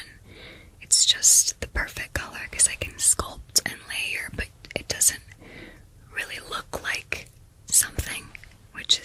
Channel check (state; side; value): identical; both; correlation 1.00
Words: It's just the perfect color because I can sculpt and layer, but it doesn't really look like something, which